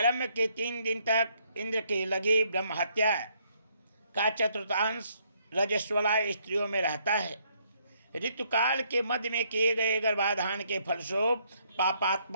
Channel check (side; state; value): both; inverted; correlation -0.70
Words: के 3 दिन तक इंद्र की लगी ब्रह्म हत्या का चतुर्थांश रजस्वला स्त्रियों में रहता है। ऋतुकाल के मध्य में किए गए गर्भाधान के फलस्वरूप